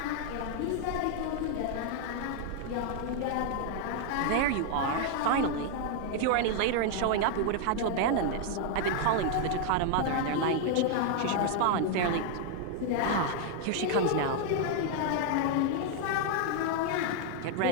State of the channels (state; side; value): different; both; correlation 0.00